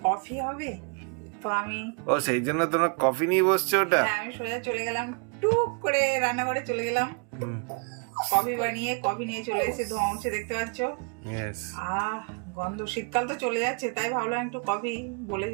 কফি হবে, তো আমি ও সেই জন্য তোমরা কফি নিয়ে বসছো ওটা? হ্যাঁ আমি সোজা চলে গেলাম, টুক করে রান্নাঘরে চলে গেলাম, হুম, কফি বানিয়ে কফি নিয়ে চলে এসে ধোঁয়া উঠছে দেখতে পাচ্ছ। yes. গন্ধ, শীতকাল তো চলে যাচ্ছে তাই ভাবলাম একটু কফি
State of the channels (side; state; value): left; quieter; 36.5 dB